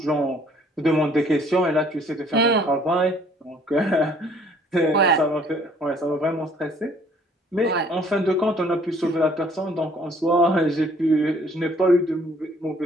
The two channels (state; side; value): normal; both; correlation 0.59